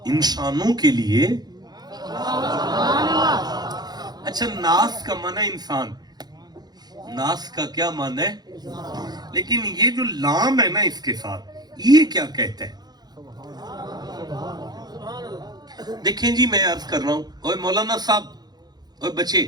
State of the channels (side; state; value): left; late; 0.19 ms